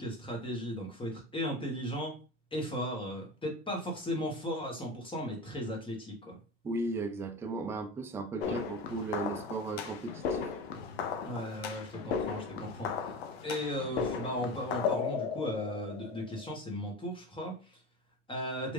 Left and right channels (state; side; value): normal; both; correlation 0.29